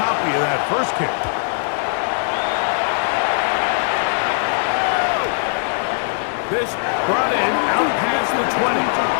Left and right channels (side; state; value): right; silent; digital silence